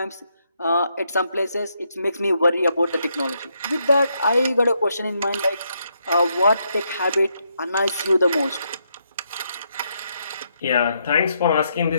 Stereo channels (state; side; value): inverted; both; correlation -0.78